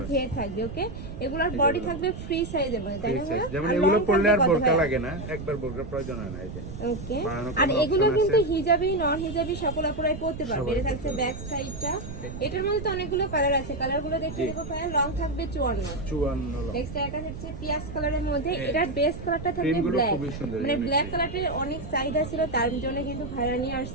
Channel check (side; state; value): right; noise; rumble, 9 dB below the sound